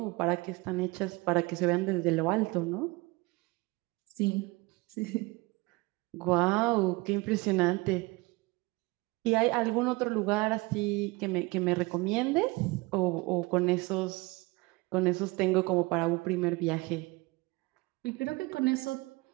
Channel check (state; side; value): quieter; left; 24.0 dB